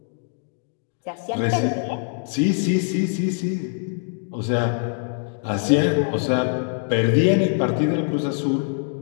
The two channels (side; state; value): right; silent; 57 dB below the other